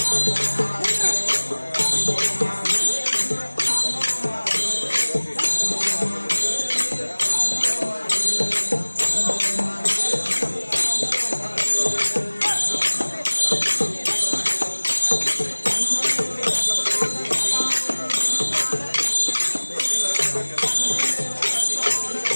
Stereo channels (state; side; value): inverted; both; correlation -1.00